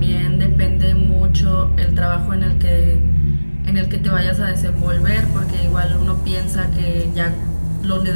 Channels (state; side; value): inverted; both; correlation -1.00